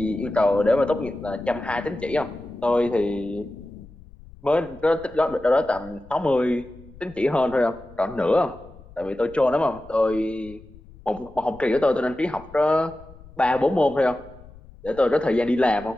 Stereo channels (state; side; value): noise; left; rumble, 21 dB below the sound